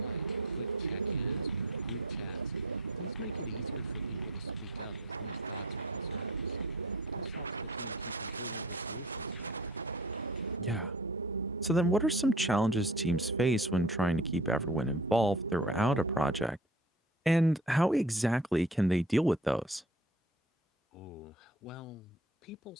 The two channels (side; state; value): both; normal; correlation 0.45